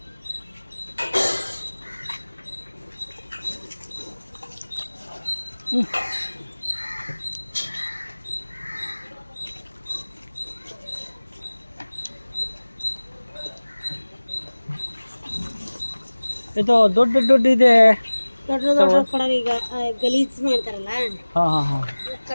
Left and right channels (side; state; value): both; inverted; correlation -1.00